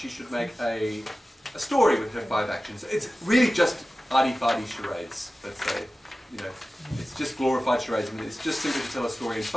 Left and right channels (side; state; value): both; normal; correlation 0.95